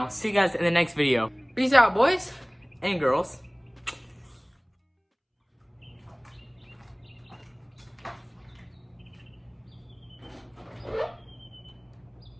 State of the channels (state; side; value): identical; both; correlation 1.00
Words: I'll see you guys in the next video. Peace out, boys and girls.